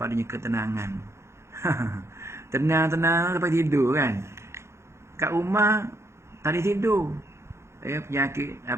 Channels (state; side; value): late; left; 0.13 ms